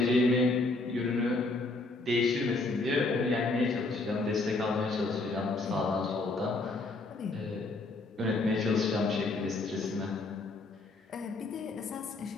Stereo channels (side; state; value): right; quieter; 3.3 dB